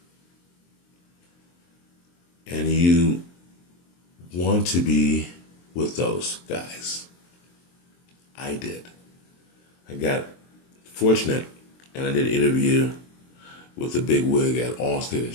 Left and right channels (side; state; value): right; late; 23 ms